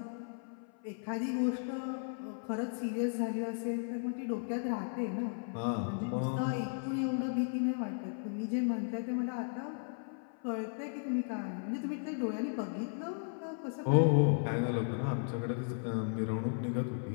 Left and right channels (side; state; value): right; silent; 54 dB below the other